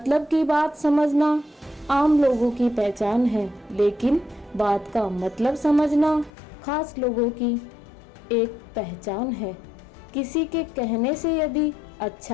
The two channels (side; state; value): right; drops out; at 6.3 s